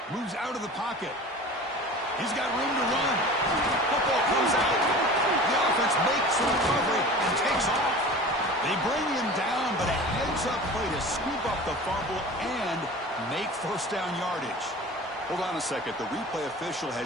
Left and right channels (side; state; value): both; normal; correlation 0.38